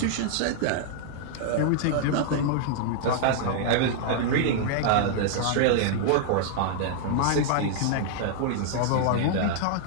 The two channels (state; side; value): different; both; correlation -0.01